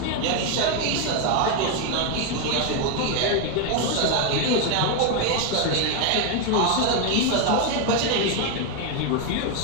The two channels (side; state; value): both; different; correlation 0.01